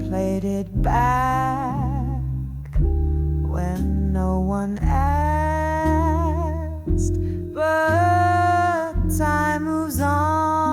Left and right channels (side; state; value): both; identical; correlation 1.00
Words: played it back when no one asked. But time moves